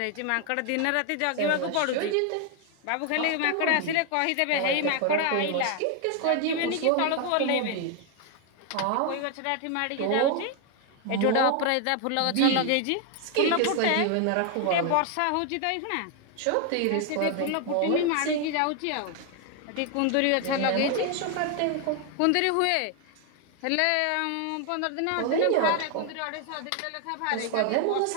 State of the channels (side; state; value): both; different; correlation 0.01